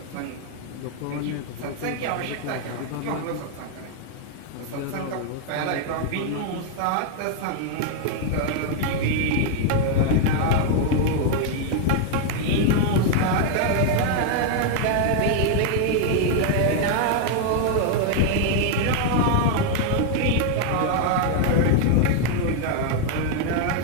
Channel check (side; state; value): both; different; correlation 0.00